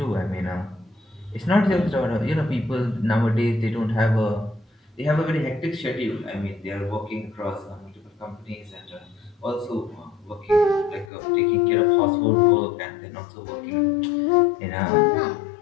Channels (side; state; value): right; drops out; at 11.1 s